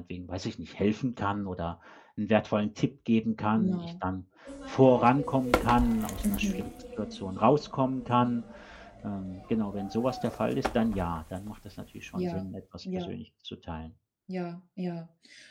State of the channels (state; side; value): identical; both; correlation 1.00